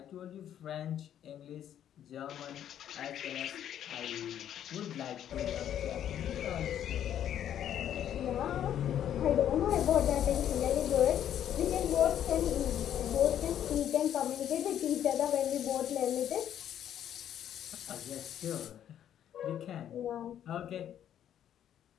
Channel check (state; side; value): quieter; right; 10.3 dB